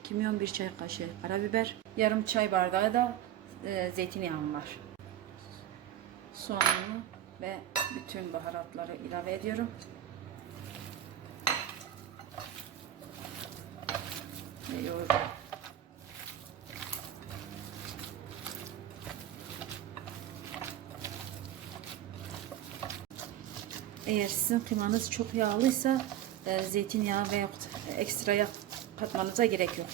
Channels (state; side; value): quieter; left; 11.8 dB